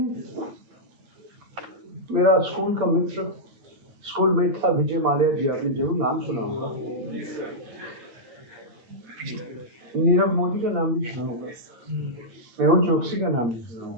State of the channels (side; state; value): left; late; 8.6 ms